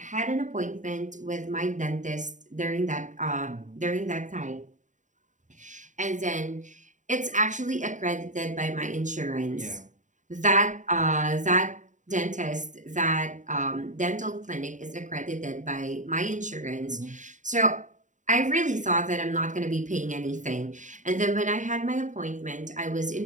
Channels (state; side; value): late; left; 0.36 ms